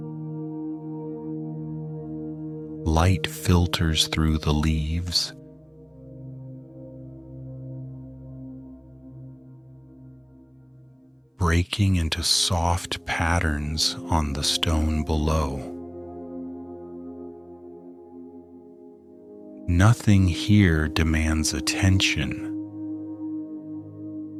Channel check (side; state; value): both; identical; correlation 1.00